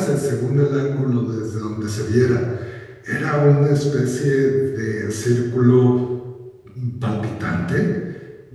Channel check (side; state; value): both; identical; correlation 1.00